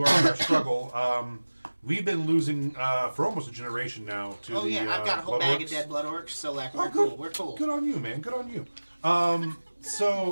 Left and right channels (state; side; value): inverted; both; correlation -1.00